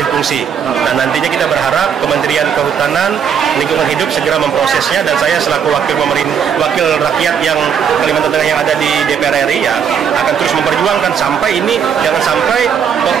fungsi. Dan nantinya kita berharap Kementerian Kehutanan, Lingkungan Hidup segera memprosesnya. Dan saya selaku wakil rakyat yang Kalimantan Tengah yang ada di DPR RI ya akan terus memperjuangkan sampai ini jangan sampai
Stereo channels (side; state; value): left; quieter; 7.6 dB